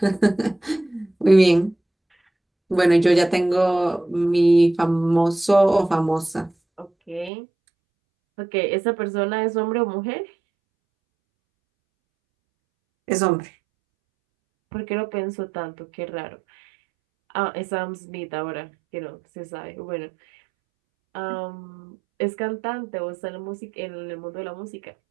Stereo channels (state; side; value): drops out; left; at 7.3 s